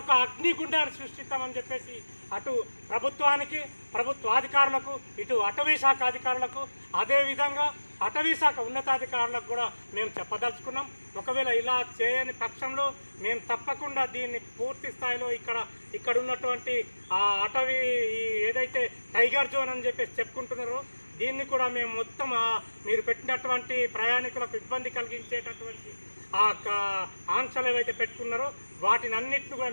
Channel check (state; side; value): inverted; both; correlation -1.00